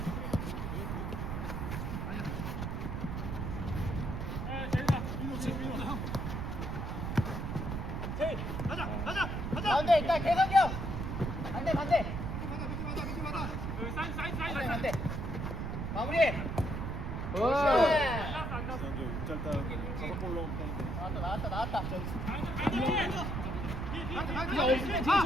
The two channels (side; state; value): right; noise; rumble, 3 dB below the sound